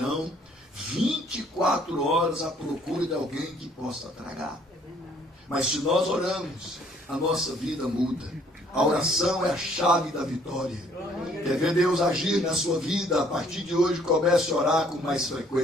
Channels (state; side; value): normal; both; correlation 0.62